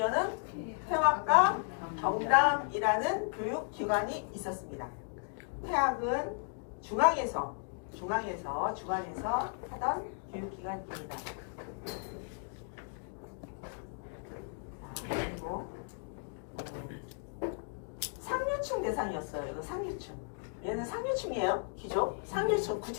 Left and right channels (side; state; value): right; silent; 55 dB below the other